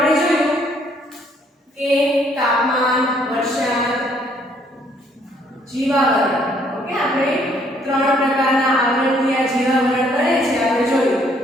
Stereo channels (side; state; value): both; normal; correlation 0.66